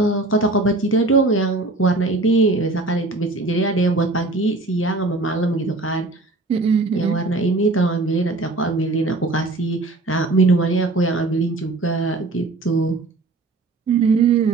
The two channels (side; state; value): left; quieter; 3.1 dB